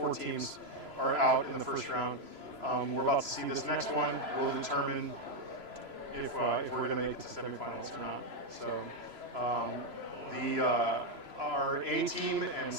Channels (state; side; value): late; left; 3.0 ms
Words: teams are out in the first round. We're about to see this next one. Will determine if we're going to make it to semifinals or not. So our A team and